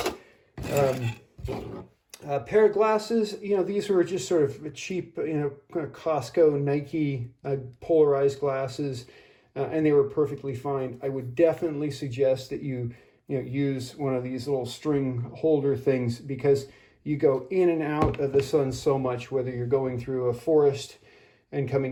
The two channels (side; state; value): both; identical; correlation 1.00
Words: Pair of glasses, these were just sort of cheap, kind of Costco, Nike polarized glasses, and they were perfectly fine. I would definitely suggest that you use one of these little string holder things, because you go in and out of the sun so much, whether you're going through a forest and